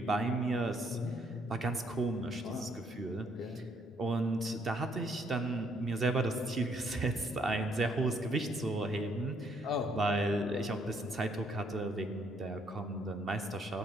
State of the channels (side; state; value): both; normal; correlation 0.68